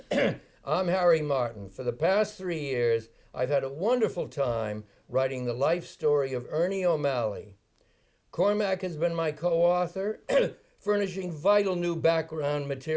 I'm Harry Martin. For the past 3 years, I've had a wonderful time writing the life story of Ernie O'Malley. Cormac has been my co-author, furnishing vital new background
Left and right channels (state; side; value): identical; both; correlation 1.00